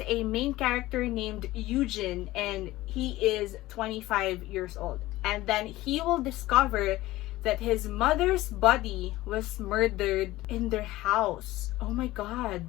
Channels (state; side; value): quieter; right; 17.4 dB